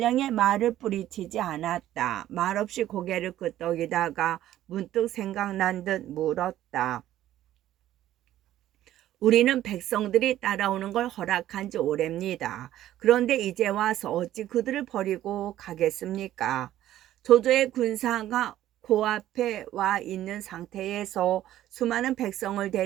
말을 뿌리치지 않았다. 말없이 고개를 끄덕이다가 문득 생각난 듯 물었다. 우리는 백성들이 따라오는 걸 허락한 지 오래입니다. 그런데 이제 와서 어찌 그들을 버리고 가겠습니까? 조조의 군사가 코앞에 와 있는 상태에서 수많은 백성을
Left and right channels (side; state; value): left; quieter; 13.1 dB